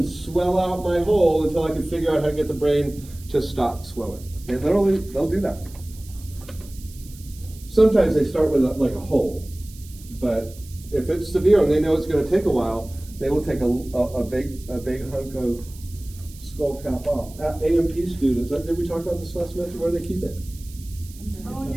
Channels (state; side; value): noise; right; hiss, 21 dB below the sound